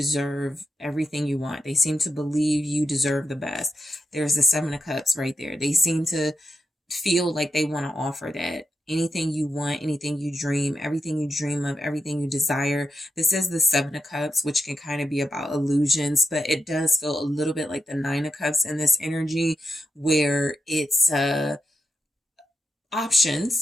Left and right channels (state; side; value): normal; both; correlation 0.86